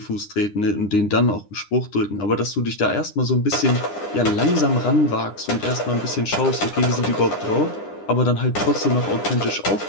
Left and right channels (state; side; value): late; right; 9.9 ms